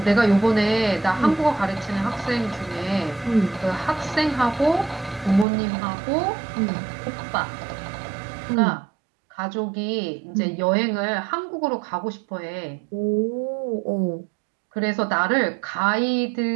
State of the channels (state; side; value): drops out; left; at 5.5 s